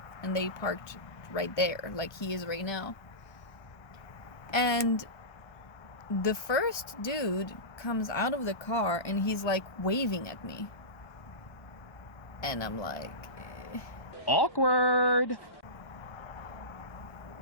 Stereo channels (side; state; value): right; late; 1.2 ms